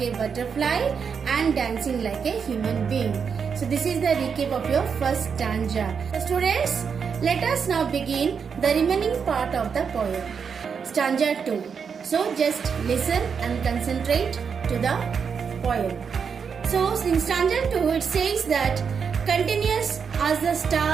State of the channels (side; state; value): left; quieter; 6.4 dB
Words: a butterfly and dancing like a human being. So this is the recap of your first stanza. So students, let us now begin the remaining part of the poem. Stanza 2. So just listen and concentrate to the poem. So in stanza 2 it says that continuous as the